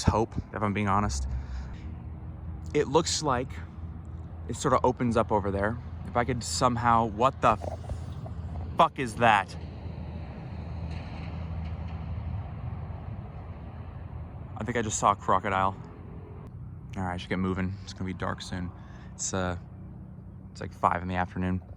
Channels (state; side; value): identical; both; correlation 1.00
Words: hope, if I'm being honest. It looks like it sort of opens up over there. If I could somehow, what the fuck is that? I think I just saw a crocodile. All right, I should get moving. It's gonna be dark soon. It's like 5 in the afternoon.